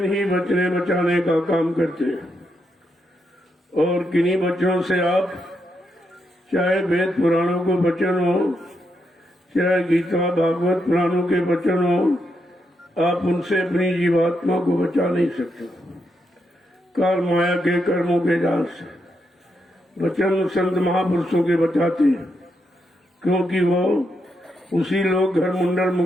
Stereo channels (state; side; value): normal; both; correlation 0.82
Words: ही बचने बचाने का काम करते हैं और किन्हीं वचनों से आप, चाहे वेद पुराणों को वचन हो, चाहे गीता भागवत पुराणों के वचन हो, आप उनसे अपनी जीवात्मा को बचा नहीं सकते। काल माया के कर्मों के जाल से वचन संत महापुरुषों के बचाते हैं, क्योंकि वो उसी लोग घर मुंडल